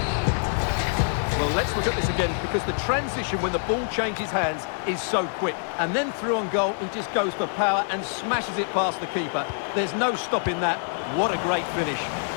Well, let's look at this again, because the transition when the ball changes hands is so quick. And then through on goal, he just goes for power and smashes it past the keeper. There's no stopping that. What a great finish.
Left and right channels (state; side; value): silent; right; digital silence